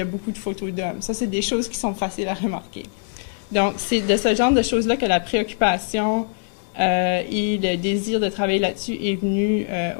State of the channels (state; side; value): silent; right; digital silence